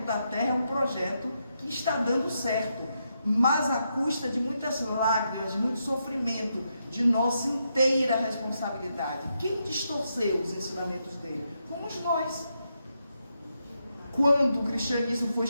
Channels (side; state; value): both; inverted; correlation -0.82